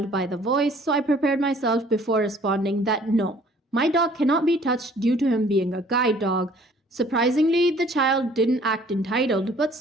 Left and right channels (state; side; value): normal; both; correlation 0.56